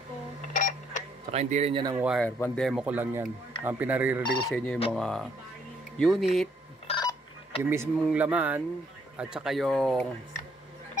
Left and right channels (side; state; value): both; normal; correlation 0.69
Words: Saka hindi rin yan ang wire. Pan-demo ko lang yan. Ang pinaririnig ko sa inyo yung mga unit, yung mismong laman, at saka yung